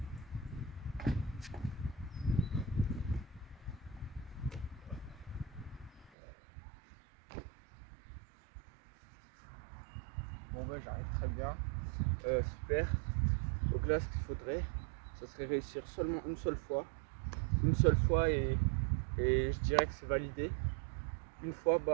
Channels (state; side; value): drops out; left; at 6.1 s